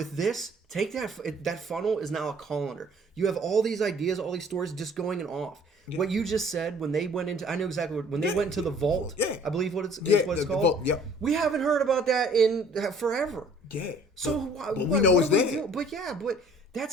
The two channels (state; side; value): normal; both; correlation 0.54